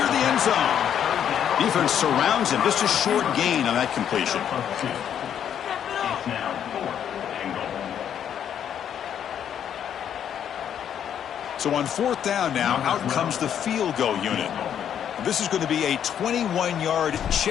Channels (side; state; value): right; quieter; 9.2 dB